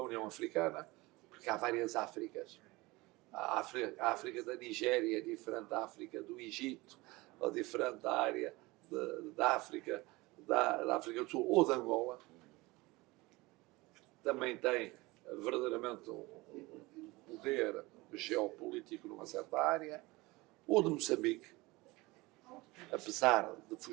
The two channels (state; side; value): quieter; left; 22.1 dB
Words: União Africana, porque há várias Áfricas. A África da Nigéria é diferente da África do Egito, ou diferente da área da África, da África do Sul ou da Angola, também tem verdadeiramente um poder geopolítico numa certa área, ou de Moçambique, apesar de